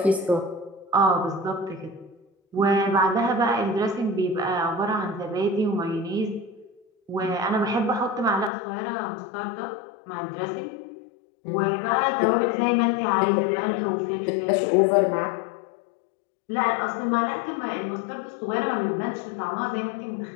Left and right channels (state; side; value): drops out; right; at 8.5 s